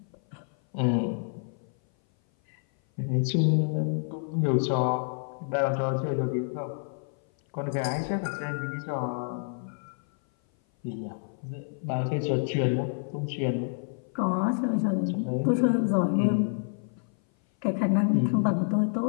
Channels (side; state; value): right; silent; 57 dB below the other